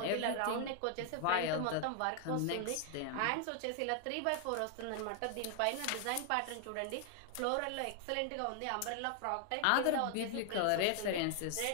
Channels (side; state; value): both; different; correlation 0.00